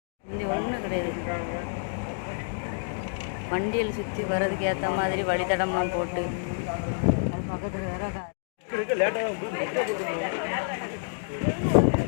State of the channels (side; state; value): right; silent; digital silence